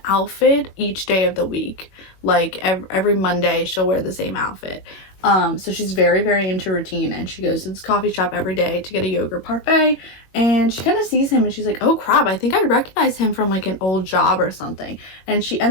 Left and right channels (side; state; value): right; late; 21 ms